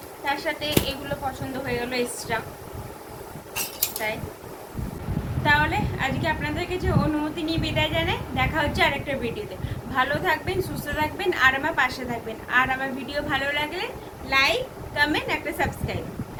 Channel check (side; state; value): both; identical; correlation 1.00